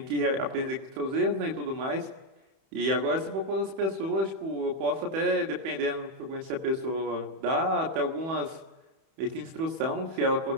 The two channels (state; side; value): late; left; 31 ms